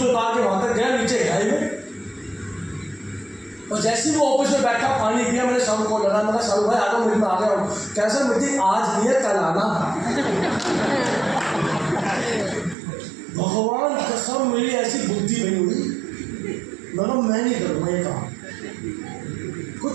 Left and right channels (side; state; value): left; drops out; at 12.8 s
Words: उतार के वहां तक गया, नीचे गहराई में। और जैसे ही वो ऑफिस में बैठा, पानी पिया, मैंने शाहरुख को लगा, मैंने शाहरुख भाई आ जाओ मीटिंग में, आ गया हूँ। कैसा मीटिंग आज नहीं है, कल आना। भगवान कसम मेरी ऐसी बुद्धि नहीं हुई, मैं नहीं करूँगा ये काम। कोई